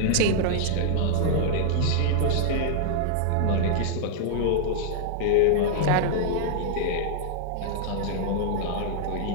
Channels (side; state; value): both; different; correlation -0.01